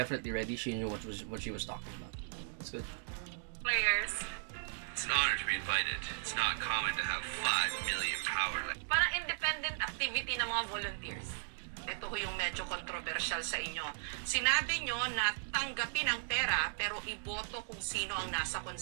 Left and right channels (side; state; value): left; silent; digital silence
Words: ready. She knew what she was talking about. That's good. Players. It's an honor to be invited. It's not common to have 5 million power. Parang independent activity ng mga volunteers. Ito ho yung medyo controversial sa inyo. Sinabi nyo na tanggapin ang pera pero iboto kung sino ang nasa